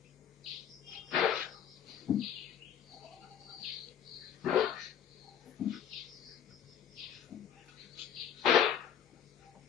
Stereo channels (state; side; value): quieter; right; 9.2 dB